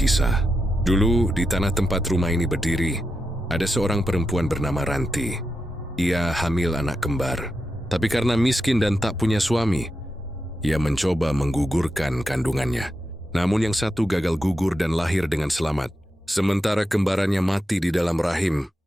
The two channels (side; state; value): both; normal; correlation 0.87